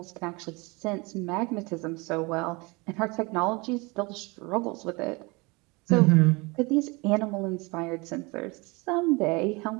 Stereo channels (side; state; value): left; quieter; 26.6 dB